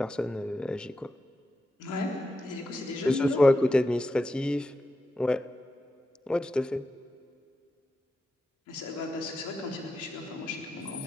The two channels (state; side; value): normal; both; correlation 0.88